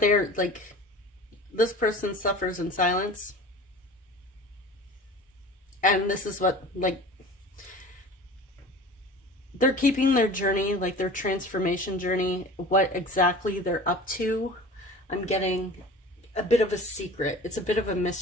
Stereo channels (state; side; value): normal; both; correlation 0.40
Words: like, this person suffers in silence. And this is what, like, they're keeping their journey, like their transformation journey, what exactly they're up to. I'm getting a bit of a secret. It's a bit of a